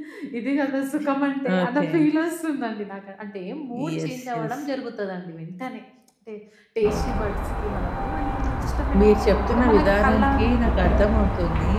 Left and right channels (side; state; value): both; identical; correlation 1.00